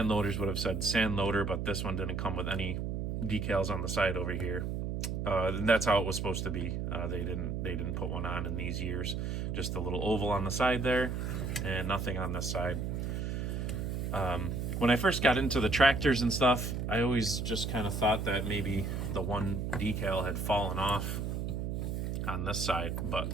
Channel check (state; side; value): noise; right; hum, 2 dB below the sound